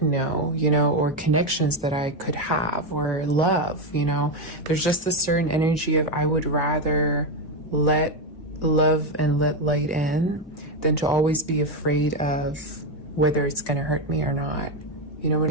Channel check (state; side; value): normal; both; correlation 0.08